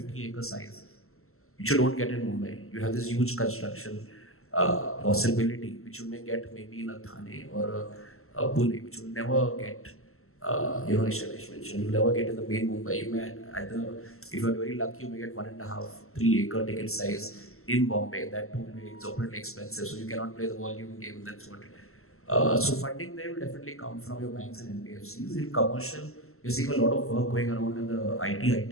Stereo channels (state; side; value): late; right; 0.62 ms